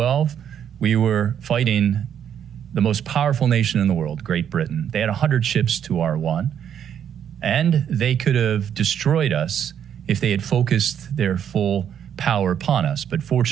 we were fighting the most powerful nation in the world, Great Britain. They had 100 ships to our 1, and they could have destroyed us if they had focused their full power upon us. But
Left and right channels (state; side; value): quieter; left; 9.0 dB